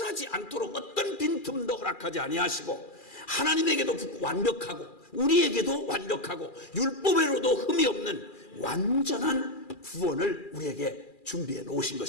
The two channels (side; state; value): right; late; 2.4 ms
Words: 않도록 어떤 빈틈도 허락하지 아니하시고, 하나님에게도 완벽하고 우리에게도 완벽하고 율법에로도 흠이 없는 완전한 구원을 우리에게 준비해 놓으신